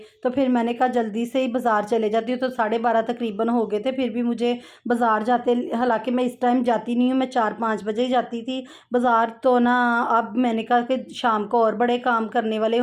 तो फिर मैंने कहा जल्दी से ही बाज़ार चले जाती हूँ। तो 12:30 तकरीबन हो गए थे, फिर भी मुझे बाज़ार जाते, हालांकि मैं इस टाइम जाती नहीं हूँ, मैं 4-5 बजे ही जाती थी बाज़ार। तो ना अब मैंने कहा कि शाम को और बड़े काम करने वाले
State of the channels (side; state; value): both; identical; correlation 1.00